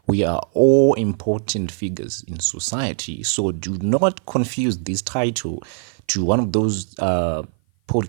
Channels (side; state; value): left; silent; 56 dB below the other